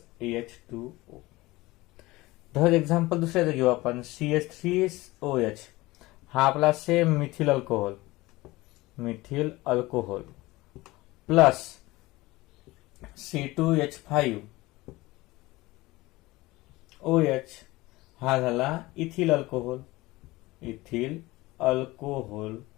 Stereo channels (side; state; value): right; quieter; 20.2 dB